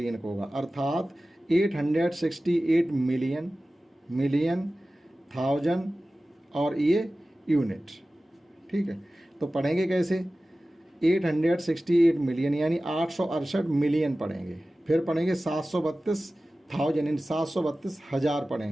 का होगा। अर्थात 868 मिलियन, मिलियन, थाउजेंड और ये यूनिट। ठीक है, तो पढ़ेंगे कैसे? 868 मिलियन यानी 868 मिलियन पढ़ेंगे, फिर पढ़ेंगे 732,000 यानी 732,000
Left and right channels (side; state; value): both; normal; correlation 0.96